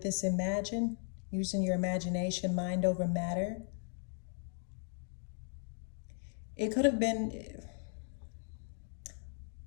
using your imagination, mind over matter, it could have been,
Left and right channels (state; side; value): silent; right; 53 dB below the other